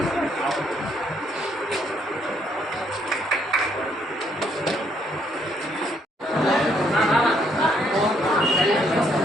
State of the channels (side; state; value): both; normal; correlation 0.70